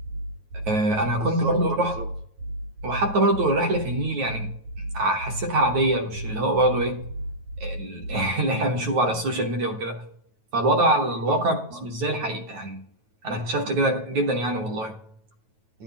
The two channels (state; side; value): late; left; 9.3 ms